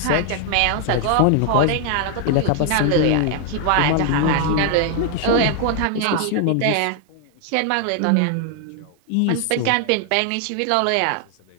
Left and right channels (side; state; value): both; different; correlation 0.00